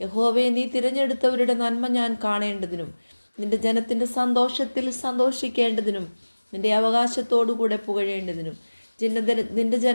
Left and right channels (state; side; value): inverted; both; correlation -1.00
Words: യഹോവയെ നീ തിരഞ്ഞെടുത്തവരുടെ നന്മ ഞാൻ കാണേണ്ടതിനും നിന്റെ ജനത്തിൻ്റെ സന്തോഷത്തിൽ സന്തോഷിക്കേണ്ടതിനും നിന്റെ അവകാശത്തോടുകൂടെ പുകഴേണ്ടതിനും നിന്റെ